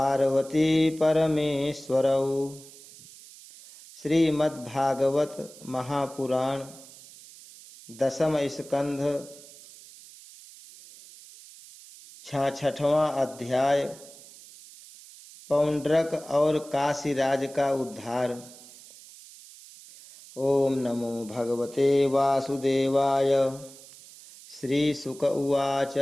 परमेश्वरौ। श्रीमद्भागवत महापुराण दशम स्कंध 66वां अध्याय पौंड्रक और काशीराज का उद्धार। ओम नमो भगवते वासुदेवाय। श्रीशुक उवाच।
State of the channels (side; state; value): right; noise; hiss, 19 dB below the sound